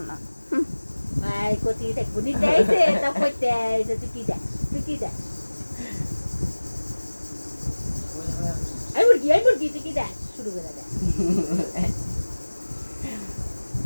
না আই কতি দেখবো নিতে আইসে তা কইতে আইসে টিকি দাস আই মুরগি টিকি দাস শুরু করে দেয়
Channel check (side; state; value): both; inverted; correlation -1.00